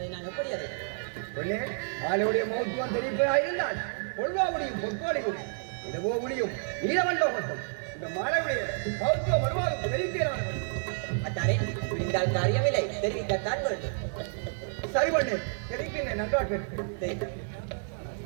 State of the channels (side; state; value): left; silent; digital silence